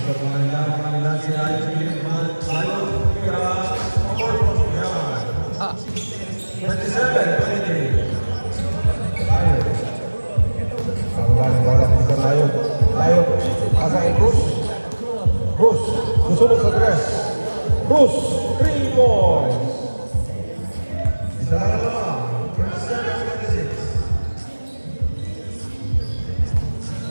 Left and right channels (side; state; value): both; inverted; correlation -1.00